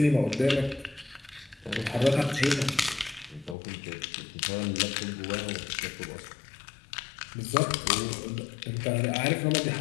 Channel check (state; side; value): drops out; right; at 3.6 s